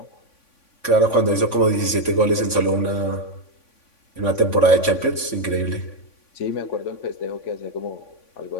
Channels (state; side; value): late; right; 3.5 ms